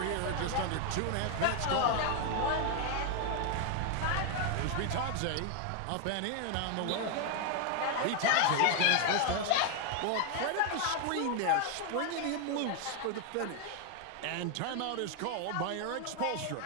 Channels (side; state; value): both; different; correlation 0.01